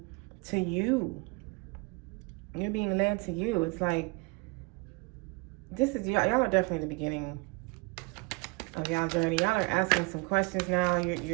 you. You're being led to you. It's like, y'all are definitely the beginning of y'all journey. Y'all are asking some questions now.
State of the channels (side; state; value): left; quieter; 28.2 dB